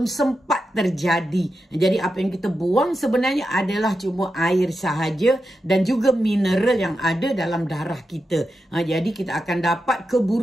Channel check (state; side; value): normal; both; correlation 0.89